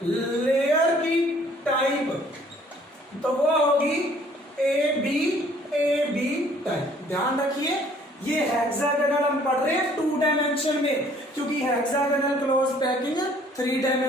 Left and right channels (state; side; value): normal; both; correlation 0.58